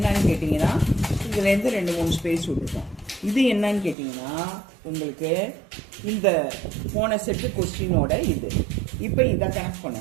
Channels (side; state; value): left; drops out; at 4.0 s